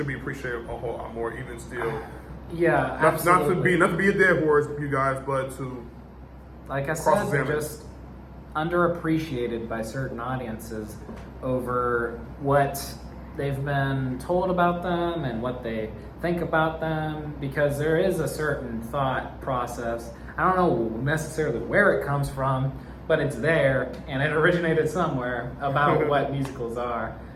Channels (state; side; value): identical; both; correlation 1.00